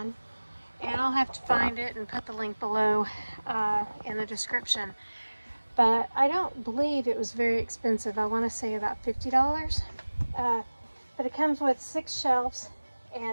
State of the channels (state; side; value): inverted; both; correlation -1.00